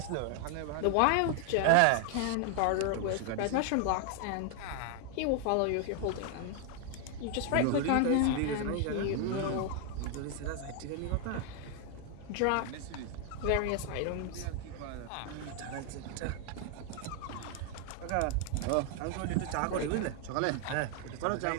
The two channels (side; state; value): both; different; correlation 0.00